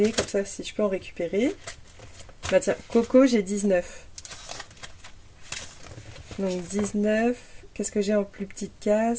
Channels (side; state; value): both; identical; correlation 1.00